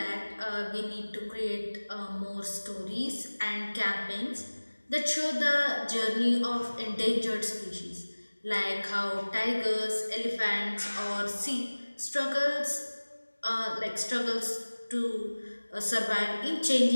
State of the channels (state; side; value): inverted; both; correlation -1.00